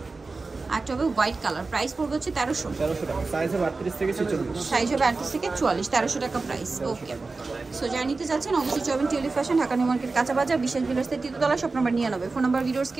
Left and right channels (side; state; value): left; quieter; 3.8 dB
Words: একটা হবে হোয়াইট কালার, প্রাইস পড়বে হচ্ছে 1300 টাকা। সাইজ হবে 38 থেকে 46। সাইজ হবে 38 থেকে 44, 1300 টাকা প্রাইস। ওকে, সো যারা নিতে চাচ্ছেন অবশ্যই যাবেন Tulip Fashion, Dhaka New Market, কাঁচা বাজার, বিশেষ বিলাসের তৃতীয়তলা, shop number 99। Phone number videos